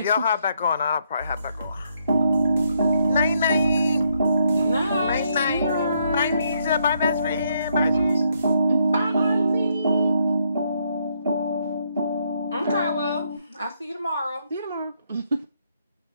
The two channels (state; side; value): inverted; both; correlation -0.75